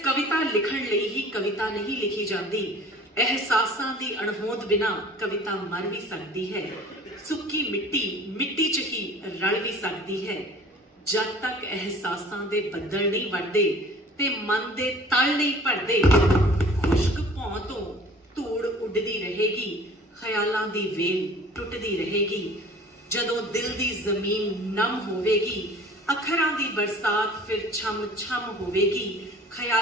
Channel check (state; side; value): normal; both; correlation 0.47